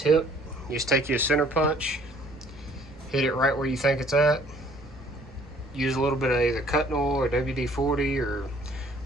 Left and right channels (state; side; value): noise; right; rumble, 26 dB below the sound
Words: You just take your center punch, hit it right where you think it's at. Use a little bit of either cutting oil or WD-40 or